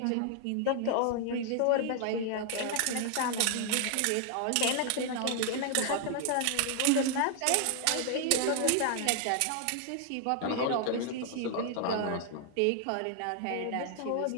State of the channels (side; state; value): both; different; correlation 0.00